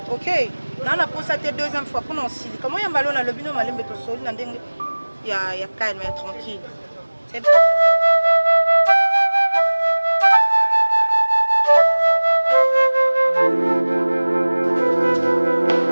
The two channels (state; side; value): inverted; both; correlation -1.00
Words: ok na na posa te deuxième fois mpona osili kama oyamba lo nalobi no malembe tosoli na ndenge il y a calme, il y a tranquille. C'est